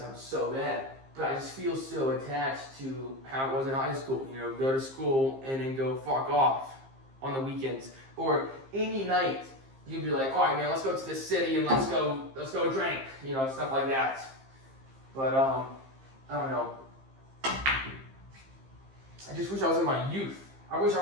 so bad. But I just feel so attached to how it was in high school. Go to school and then go fuck off on the weekends. Or any night, you'd be like, all right, man, let's go to the city and let's go drink. Stuff like that. But, I don't know. I just wish I was in my youth. I wish I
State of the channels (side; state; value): left; late; 15 ms